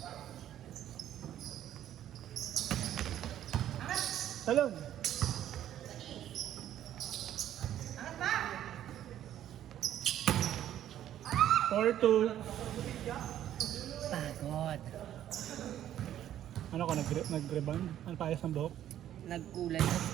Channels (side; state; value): left; quieter; 11.5 dB